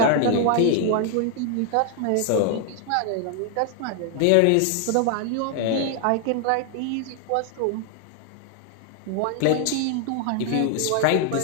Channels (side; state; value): both; different; correlation 0.00